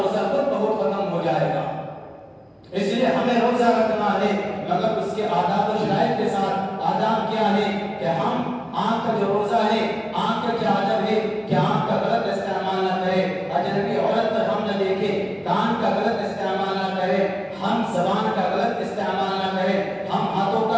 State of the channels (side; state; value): both; identical; correlation 1.00